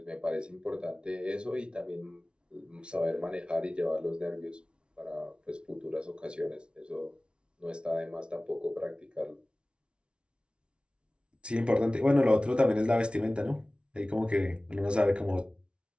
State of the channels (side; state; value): left; late; 0.058 ms